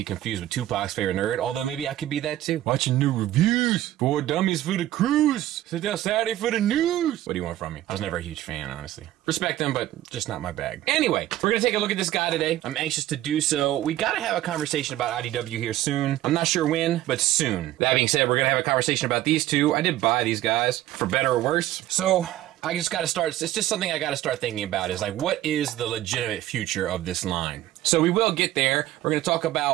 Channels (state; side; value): quieter; left; 14.2 dB